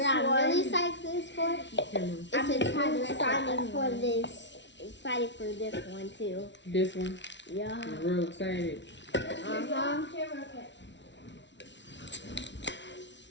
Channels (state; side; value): late; right; 0.52 ms